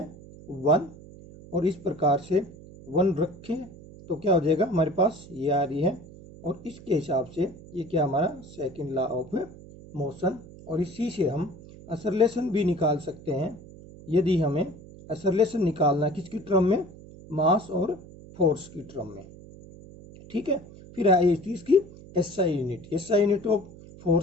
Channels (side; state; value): right; noise; hum, 18 dB below the sound